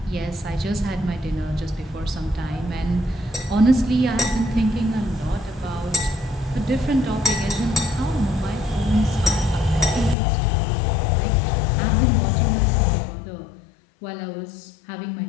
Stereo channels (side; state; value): right; drops out; at 10.2 s